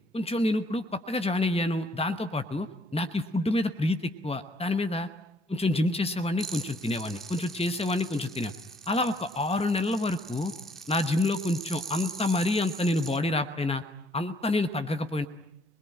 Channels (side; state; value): both; normal; correlation 0.65